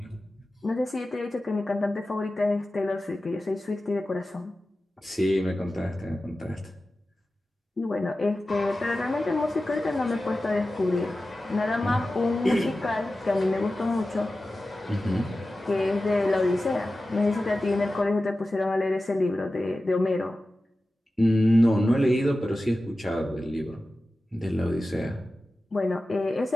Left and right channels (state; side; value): normal; both; correlation 0.94